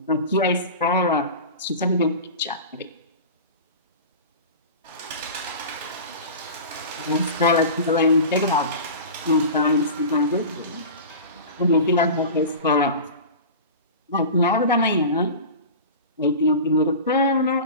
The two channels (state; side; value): inverted; both; correlation -0.32